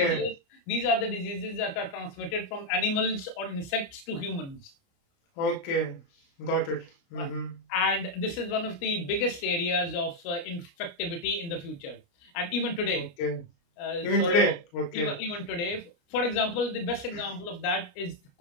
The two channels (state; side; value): late; right; 29 ms